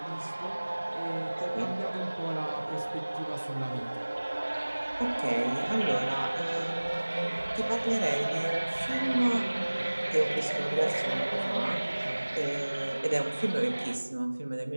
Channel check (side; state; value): both; inverted; correlation -1.00